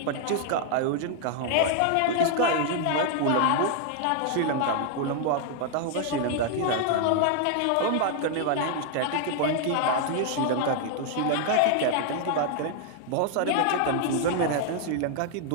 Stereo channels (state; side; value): different; both; correlation 0.00